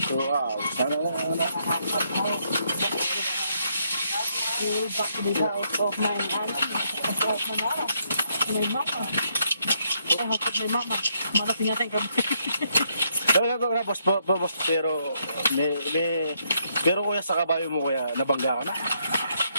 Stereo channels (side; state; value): both; inverted; correlation -0.74